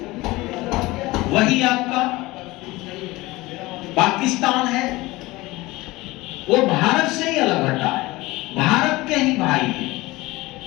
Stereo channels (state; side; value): quieter; right; 20.4 dB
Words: वही आपका पाकिस्तान है, वो भारत से ही अलग हटा है, भारत के ही भाई है,